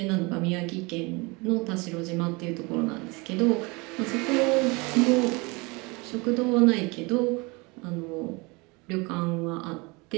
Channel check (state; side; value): quieter; left; 26.8 dB